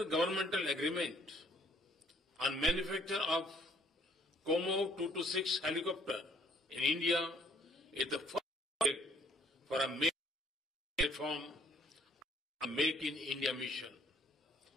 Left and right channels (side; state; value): both; normal; correlation 0.62